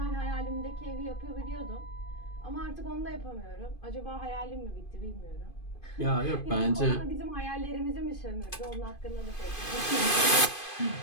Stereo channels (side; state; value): right; late; 2.5 ms